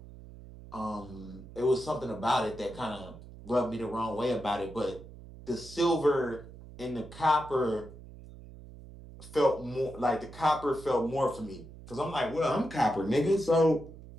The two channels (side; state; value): right; noise; hum, 17 dB below the sound